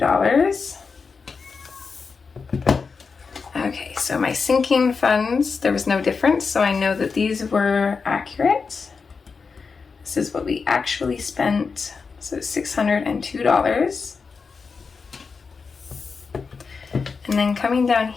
Okay, so my sinking funds, there was no difference, so I know that these were accurate. This is what we actually spent, so $602. And then coming down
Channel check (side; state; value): right; quieter; 5.1 dB